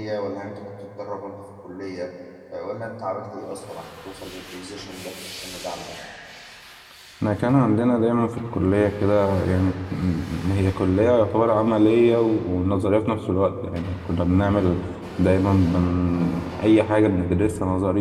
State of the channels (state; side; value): identical; both; correlation 1.00